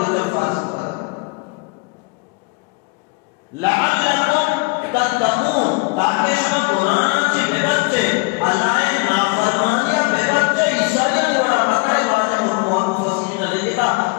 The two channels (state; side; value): quieter; right; 30.2 dB